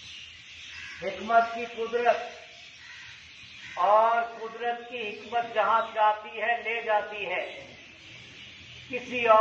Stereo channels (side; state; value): both; identical; correlation 1.00